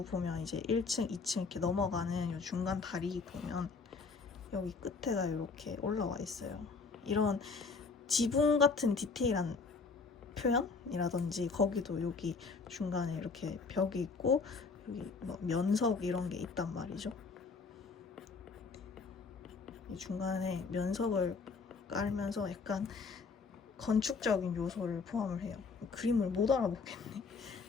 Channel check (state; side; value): quieter; right; 4.6 dB